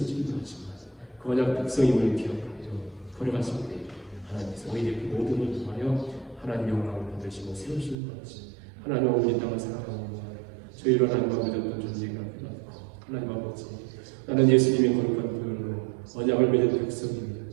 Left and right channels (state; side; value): drops out; left; at 8.0 s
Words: 하지만 그 언약 백성임을 기억하여 걸어갔을 때 하나님께서 오히려 그 모든 걸 통하여 하나님 영광을 받으시고 세우시는 것이 하나님 아버지 땅을 살아가는 저희로 하나님 아버지 어떤 존재가 깨닫고 하나님 아버지 나는 예수님의 거룩한 교회로 언약을 맺은 백성입니다.